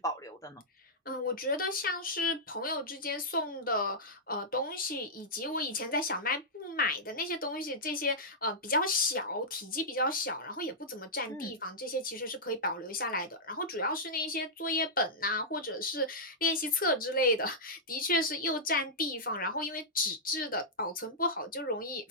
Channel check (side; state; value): both; normal; correlation -0.11